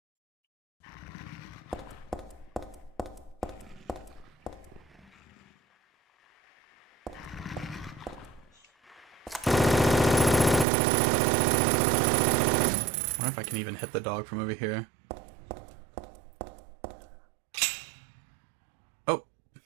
I wonder if I can even hit the dog from over here. Oh,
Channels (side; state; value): left; drops out; at 10.7 s